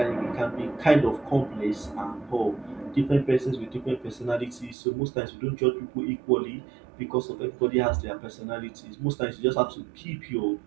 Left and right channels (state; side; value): drops out; left; at 4.8 s